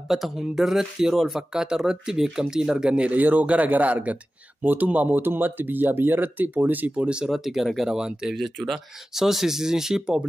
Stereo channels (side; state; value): both; normal; correlation 0.95